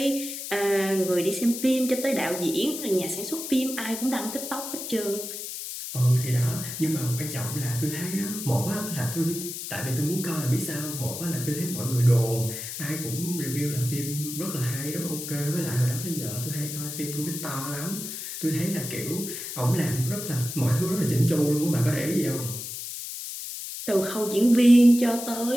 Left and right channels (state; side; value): noise; left; hiss, 7 dB below the sound